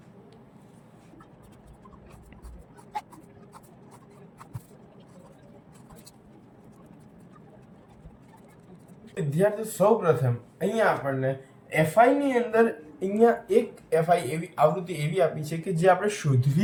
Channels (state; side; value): identical; both; correlation 1.00